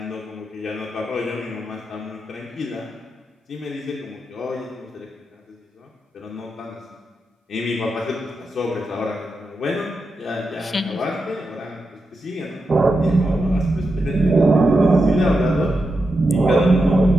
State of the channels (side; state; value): both; normal; correlation 0.88